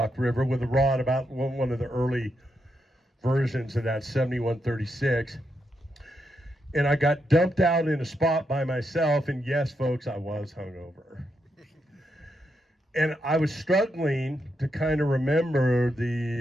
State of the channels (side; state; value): both; normal; correlation 0.82